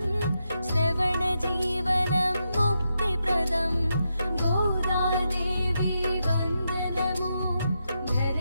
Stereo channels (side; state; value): both; inverted; correlation -0.85